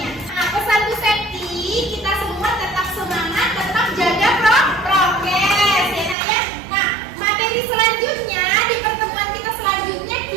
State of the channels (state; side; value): drops out; left; at 6.2 s